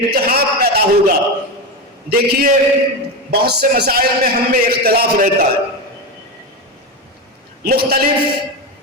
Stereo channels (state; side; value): normal; both; correlation 0.17